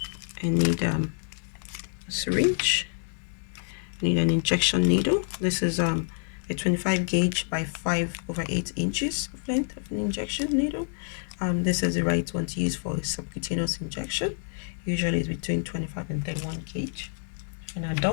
I need a syringe. I need an injection needle. This is a 25 gauge by 5/8 inches of length of an injection needle. This is the right one to use for a subcutaneous injection. Usually it's between 25 and 31 gauge. In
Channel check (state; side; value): silent; right; 60 dB below the other